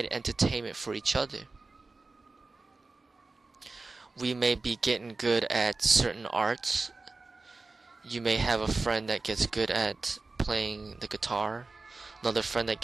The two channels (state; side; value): quieter; left; 3.6 dB